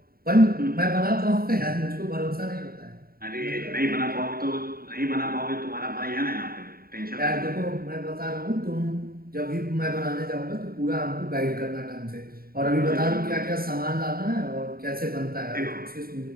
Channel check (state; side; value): late; left; 0.43 ms